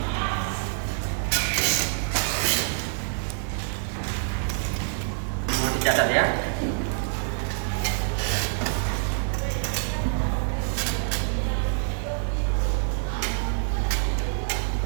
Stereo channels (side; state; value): left; silent; digital silence